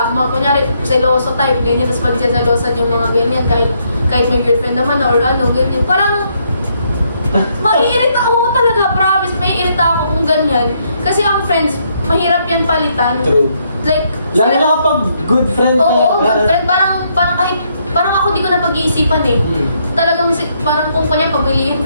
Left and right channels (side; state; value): both; inverted; correlation -0.73